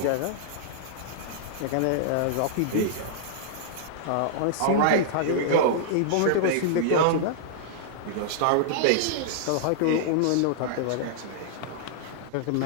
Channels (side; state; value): both; different; correlation -0.01